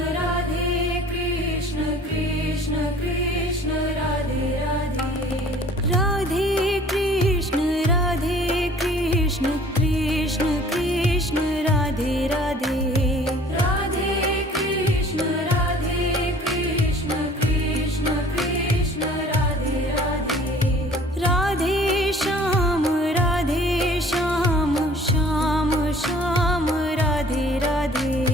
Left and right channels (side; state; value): both; normal; correlation 0.52